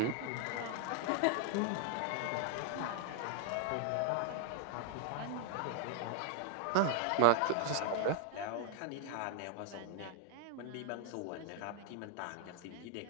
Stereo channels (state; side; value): different; both; correlation 0.00